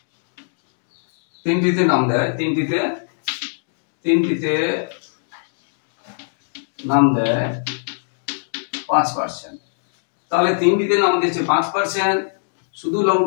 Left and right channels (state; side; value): silent; right; digital silence